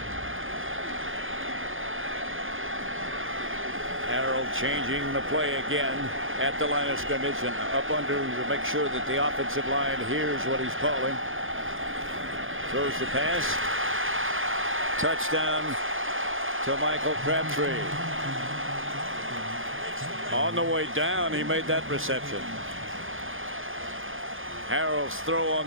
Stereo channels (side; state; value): left; late; 0.59 ms